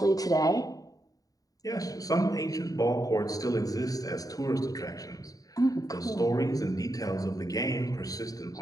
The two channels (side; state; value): right; late; 0.18 ms